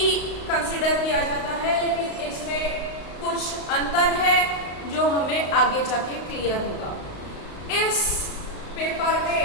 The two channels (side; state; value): right; late; 35 ms